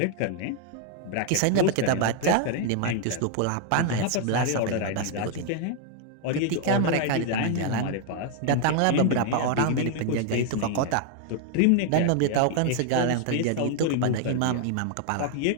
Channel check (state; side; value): different; both; correlation 0.00